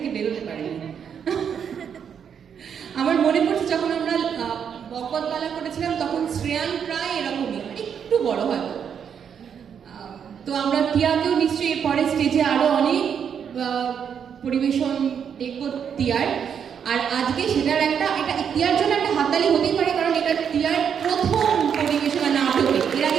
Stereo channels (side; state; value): left; quieter; 7.7 dB